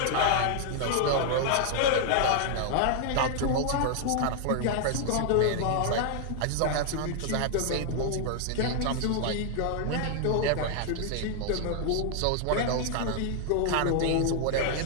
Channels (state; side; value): different; both; correlation 0.00